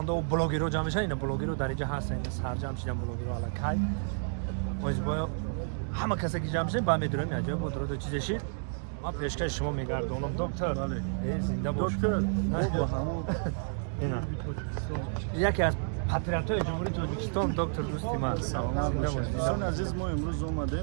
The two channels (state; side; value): silent; left; digital silence